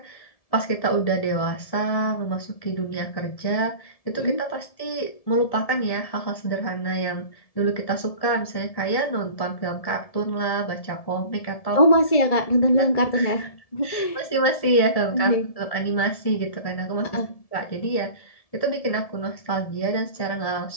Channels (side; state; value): right; late; 1.7 ms